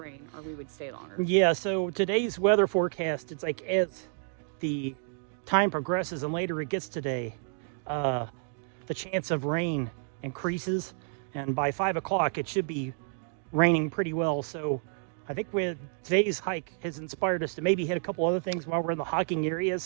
or we would stay longer. Yeah, so today's weather forecast, it's like as the time progresses and later it gets today, the chance of rain increases, and by 5 o'clock it should be raining pretty well. So I think today's hike has inspired us to maybe hit a couple other things while we're in the hiking area.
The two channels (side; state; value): left; silent; 58 dB below the other